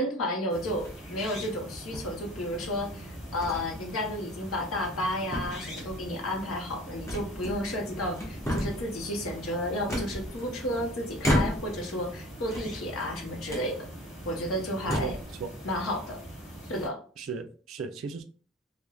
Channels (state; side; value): normal; both; correlation 0.41